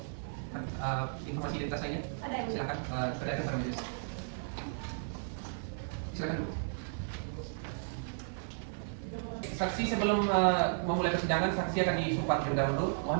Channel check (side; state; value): left; silent; 55 dB below the other